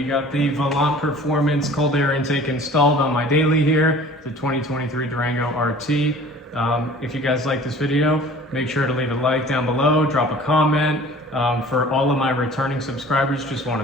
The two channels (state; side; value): normal; both; correlation 0.46